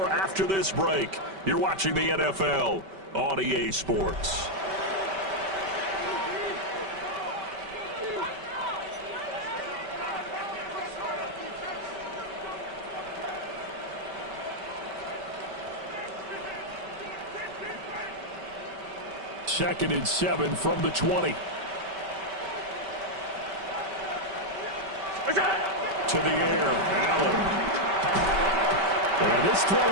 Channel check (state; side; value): late; left; 5.2 ms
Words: after this break. You're watching the NFL on EA Sports. Second and 7 from the 20. To the air, Allen. And this throw